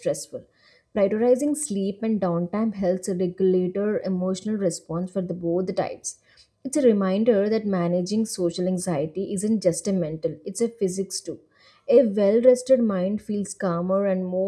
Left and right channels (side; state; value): both; identical; correlation 1.00